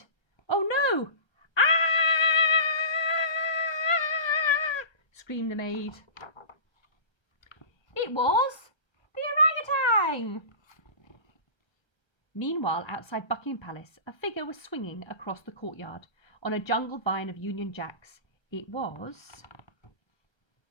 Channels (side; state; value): right; late; 1.3 ms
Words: "Oh no! Ah!" screamed the maid. It was the orangutan! Meanwhile, outside Buckingham Palace, a figure was swinging across the courtyard on a jungle vine of Union Jacks. It was...